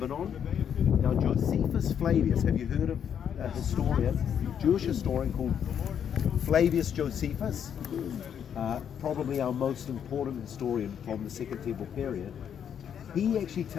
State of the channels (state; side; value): quieter; right; 8.5 dB